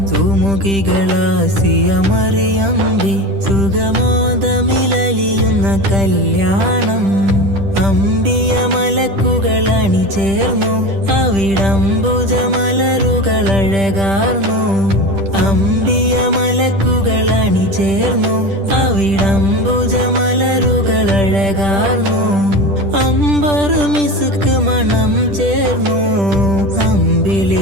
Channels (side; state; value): left; late; 10 ms